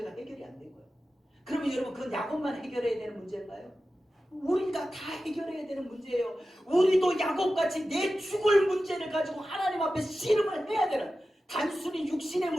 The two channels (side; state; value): both; normal; correlation 0.93